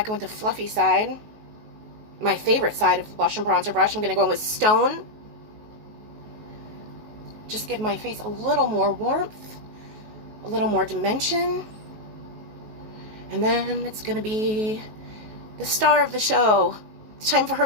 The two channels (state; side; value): late; left; 19 ms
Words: in with the fluffy side. My favorite side of the blush and bronzer brush. I'm going to go in with Stone. just give my face a little more warmth, a little more dimension. And then it's gonna be the star of the show. It's time for